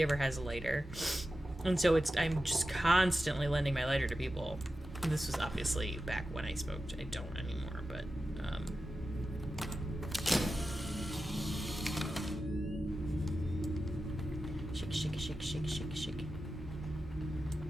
ever has a lighter. And so I'm just constantly lending my lighter to people. This was obviously back when I smoked. I don't anymore, but, Shake, shake, shake, shake, shake, shake.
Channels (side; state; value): both; normal; correlation 0.92